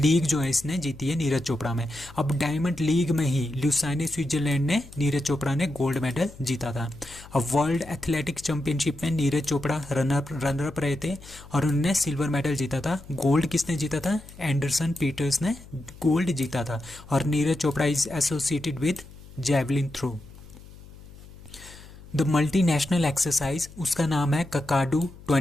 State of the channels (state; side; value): noise; left; hum, 19 dB below the sound